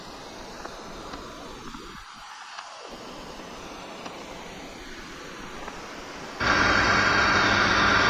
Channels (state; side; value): identical; both; correlation 1.00